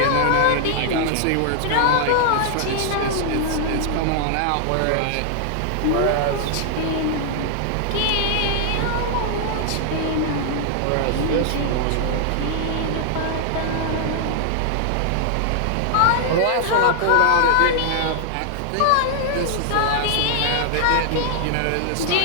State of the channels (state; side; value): different; both; correlation 0.00